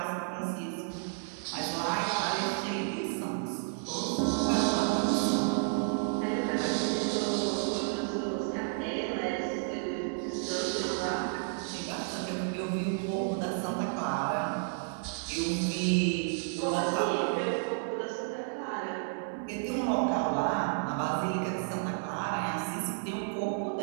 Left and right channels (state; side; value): silent; left; 57 dB below the other